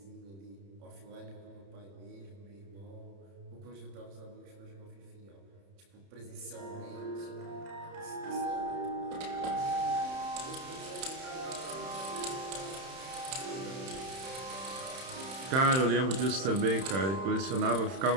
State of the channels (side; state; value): left; late; 31 ms